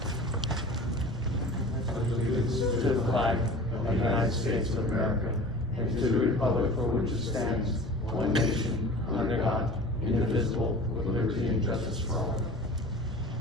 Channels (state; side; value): normal; both; correlation 0.40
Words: Allegiance to the flag of the United States of America and to the republic for which it stands, one nation, under God, indivisible, with liberty and justice for all.